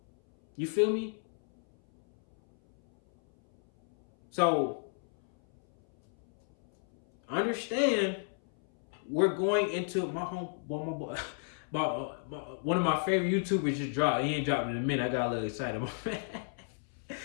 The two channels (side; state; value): right; silent; 56 dB below the other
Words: You feel me? So, understand, we're going into my home. One of my favorite YouTubers just dropped. He ain't dropped in a minute. I got a little excited.